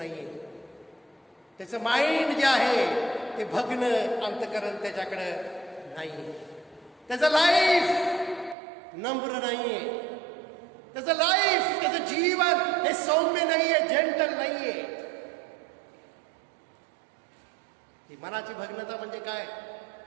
त्याचं माइंड जे आहे ते भग्न अंतकरण त्याच्याकडे नाहीये. त्याचं लाईफ नम्र नाहीये. त्याचं लाईफ, त्याचं जीवन हे सौम्य नाहीये, जेंटल नाहीये. ही मनाची भग्नता म्हणजे काय?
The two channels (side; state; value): left; drops out; at 8.6 s